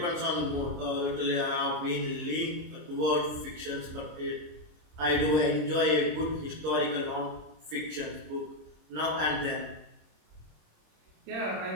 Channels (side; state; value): left; late; 26 ms